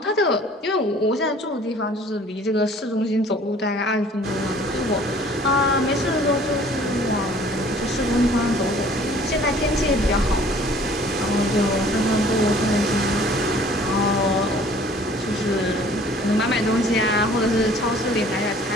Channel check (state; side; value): normal; both; correlation 0.53